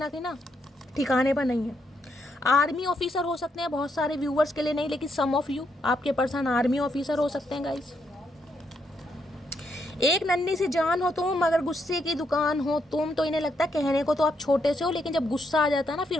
ठिकाने पर नहीं है। आर्मी ऑफिसर हो सकते हैं, बहुत सारे व्यूवर्स के लिए नहीं, लेकिन सम ऑफ यू, आपके पर्सन आर्मी ऑफिसर हो सकते हैं गाइस। एक नन्ही सी जान हो तुम, मगर गुस्से की दुकान हो तुम। तो इन्हें लगता है कहने को तो आप छोटे से हो, लेकिन जब गुस्सा आ जाता है ना, फिर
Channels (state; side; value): normal; both; correlation 0.78